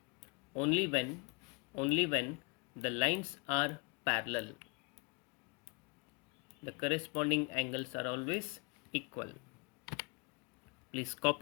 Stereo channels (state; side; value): quieter; right; 30.5 dB